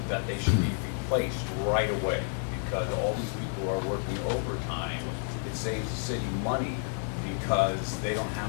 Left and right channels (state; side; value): silent; right; 58 dB below the other